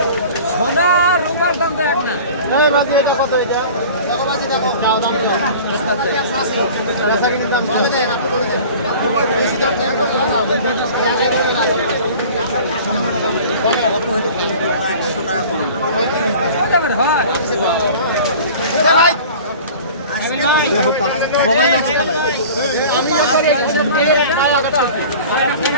সোনা রূপার দাম তো এক না।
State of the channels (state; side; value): inverted; both; correlation -0.42